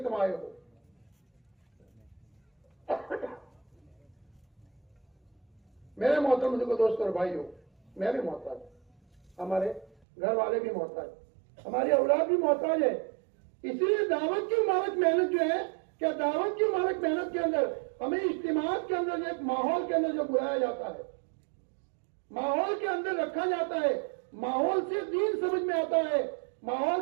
تم آئے ہو. میرے محترم بزرگوں دوستوں اور بھائیوں, میں بھی محتاج, ہمارے گھر والے بھی محتاج, ہماری اولاد بھی محتاج ہے. اسی لیے دعوت کی مبارک محنت جو ہے, کیا دعوت کی مبارک محنت کے اندر ہمیں اجتماعات کے اندر ایک ماحول کے اندر جو بلایا جاتا ہے, ماحول کے اندر رکھا جاتا ہے, ماحول سے دین سمجھ میں آتا ہے, ماحول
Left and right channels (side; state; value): left; drops out; at 9.9 s